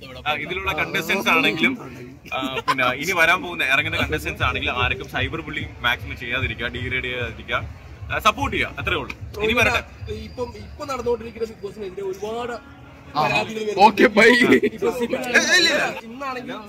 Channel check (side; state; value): both; identical; correlation 1.00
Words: ആണെങ്കിലും പിന്നെ ഇനി വരാൻ പോകുന്ന ഇറങ്ങുന്ന കണ്ടസ്റ്റൻസ് ആണെങ്കിലും ആർക്കും സൈബർ ബുള്ളിങ് മാക്സിമം ചെയ്യാതിരിക്കുക, ഡീഗ്രേഡ് ചെയ്യാതിരിക്കുക, സപ്പോർട്ട് ചെയ്യുക, അത്രേ ഉള്ളൂ. ഇനി വരട്ടെ. ഇപ്പൊ നടന്നുകൊണ്ടിരിക്കുന്ന ബിഗ് ബോസിനെതിരെ ഒരുപാട് ഓക്കെ ബൈ.